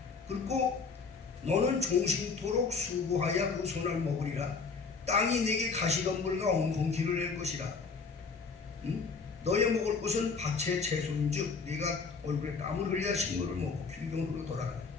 그리고 너는 종신토록 수고하여 그 손을 먹으리라. 땅이 내게 가시덤불과 엉겅퀴를 낼 것이라. 너의 먹을 것은 밭의 채소인즉 네가 얼굴에 땀을 흘려 식물을 먹고 길경으로 돌아가라.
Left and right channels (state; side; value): quieter; right; 4.8 dB